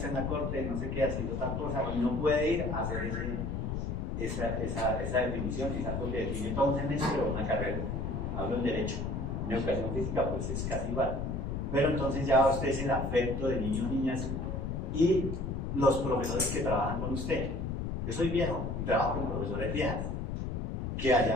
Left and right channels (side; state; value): left; noise; rumble, 2 dB below the sound